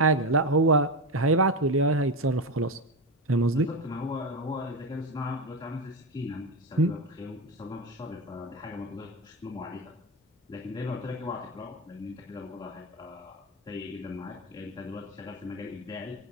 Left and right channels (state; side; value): normal; both; correlation 0.14